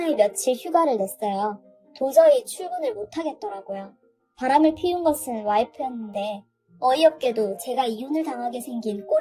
며칠 휴가를 냈어요. 도저히 출근을 못하겠더라고요. 바람을 피운 것은 와이프였는데 어이없게도 제가 이혼을 당하게 생긴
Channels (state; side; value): identical; both; correlation 1.00